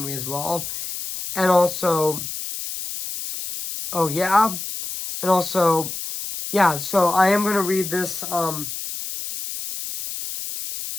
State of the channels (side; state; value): left; noise; hiss, 7 dB below the sound